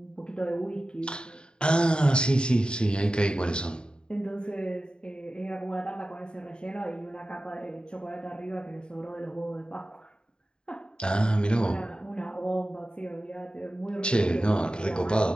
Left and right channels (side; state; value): right; late; 0.049 ms